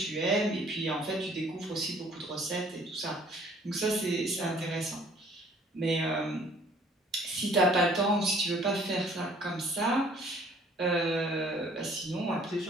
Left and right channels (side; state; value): both; normal; correlation 0.57